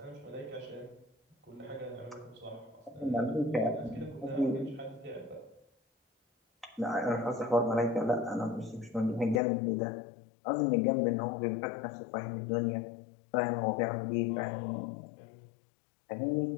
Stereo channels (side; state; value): right; drops out; at 9.4 s